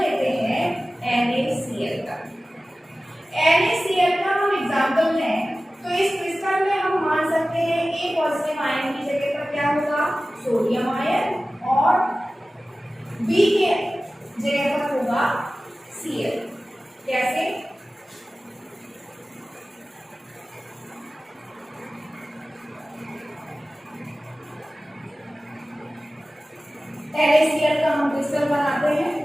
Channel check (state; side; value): normal; both; correlation 0.96